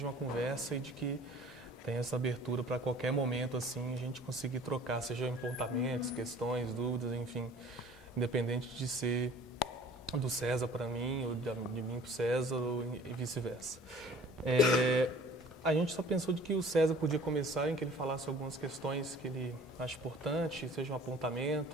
uma conversa e de que tenha essa abertura para qualquer momento, assim, a gente conseguir trocar, seja apontamentos, questões, dúvidas, enfim, independente de ser do César para mim ou de mim para o César e vice-versa. A gente só pensou de que o César podia começar em que ele falasse algumas questões que ele acha importante, sejam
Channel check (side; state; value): both; normal; correlation 0.49